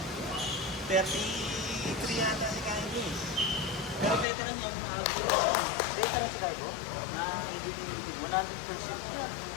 33 yata si Kylie. Pero veteran niya, mga siya. Veteran si Kaibo? Na ibigin 100% yan.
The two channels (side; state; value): right; drops out; at 4.2 s